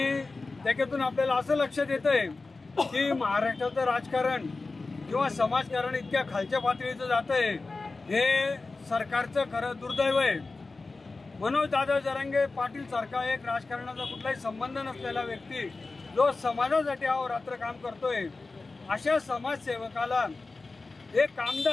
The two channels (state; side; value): quieter; right; 3.7 dB